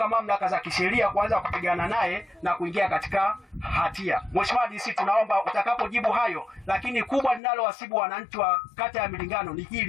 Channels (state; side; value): drops out; right; at 7.4 s